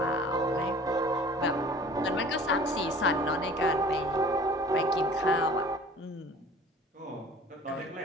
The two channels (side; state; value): both; normal; correlation 0.47